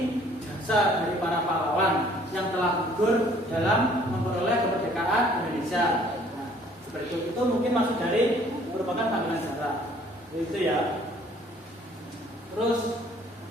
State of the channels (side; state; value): both; normal; correlation 0.58